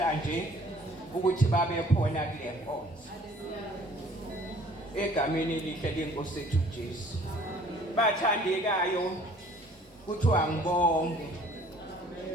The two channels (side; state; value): both; normal; correlation 0.54